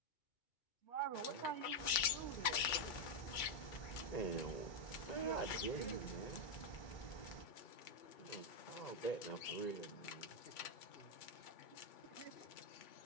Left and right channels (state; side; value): late; right; 2.3 ms